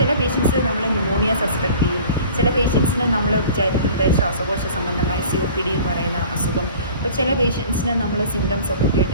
പേഷ്യൻസ് നമ്മൾ ന്യൂമോണിയ സസ്പെക്ട് ചെയ്യും, ചില പേഷ്യൻസിന് നമ്മൾ വിചാരിക്കുന്നത് ശ്വാസകോശ സംബന്ധമായ COPD എന്ന് പറയുന്ന അസുഖം. അപ്പോൾ ചില പേഷ്യൻസിന് നമ്മൾ സിംറ്റംസ് ഒക്കെ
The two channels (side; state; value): both; inverted; correlation -0.45